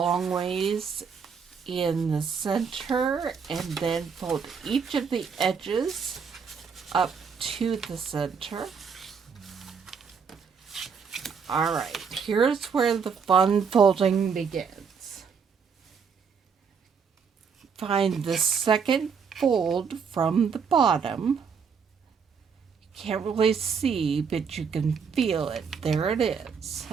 ways in the center, and then fold each of the edges up to the center. Alright, here's where the fun folding begins. Find the second fold from the bottom. Can't really see, but you can feel it. There it is.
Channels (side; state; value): left; quieter; 6.1 dB